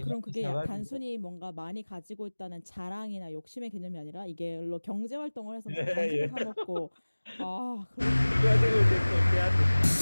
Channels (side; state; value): both; inverted; correlation -1.00